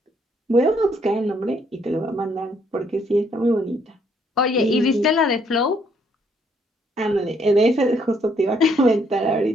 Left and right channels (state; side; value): normal; both; correlation 0.69